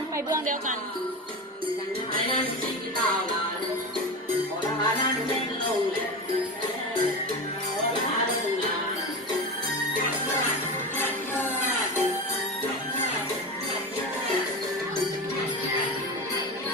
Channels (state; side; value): normal; both; correlation 0.23